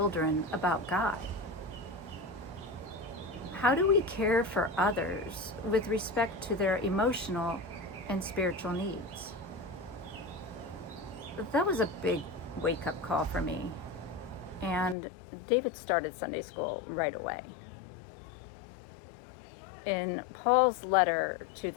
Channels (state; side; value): drops out; right; at 15.0 s